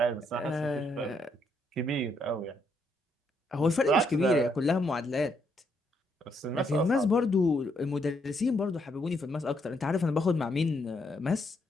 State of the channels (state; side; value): normal; both; correlation 0.75